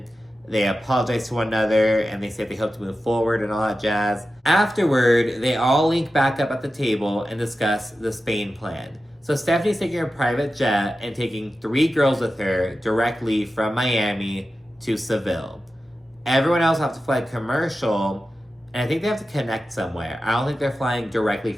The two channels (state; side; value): normal; both; correlation 0.93